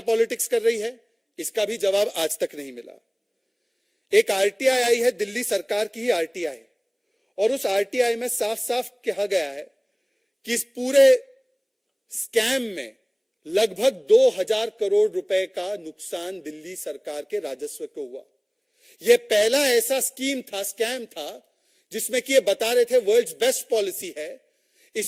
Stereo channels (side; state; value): both; identical; correlation 1.00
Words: पॉलिटिक्स कर रही है? इसका भी जवाब आज तक नहीं मिला। एक आरटीआई आई है, दिल्ली सरकार की ही आरटीआई, और उस आरटीआई में साफ साफ कहा गया है कि इस पूरे स्कैम में लगभग 2000 करोड़ रुपए का नुकसान दिल्ली सरकार के राजस्व को हुआ। यह पहला ऐसा स्कैम था जिसमें कि ये बता रहे थे वर्ल्ड्स बेस्ट पॉलिसी है,